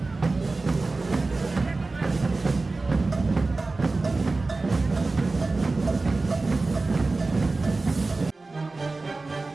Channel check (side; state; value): left; quieter; 3.5 dB